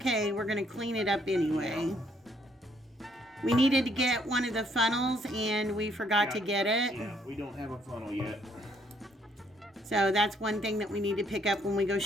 We're going to clean it up anyway. We needed to get one of the funnels, and we forgot to get it. Yeah, we don't have a funnel yet. So that's one thing that we need to pick up when we go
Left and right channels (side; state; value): both; normal; correlation 0.68